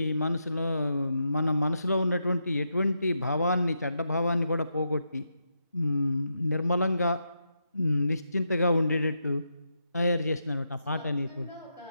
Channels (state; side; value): inverted; both; correlation -0.84